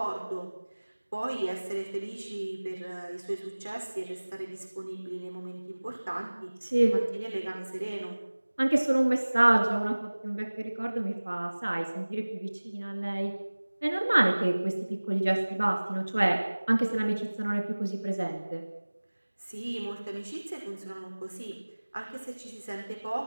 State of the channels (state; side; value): inverted; both; correlation -1.00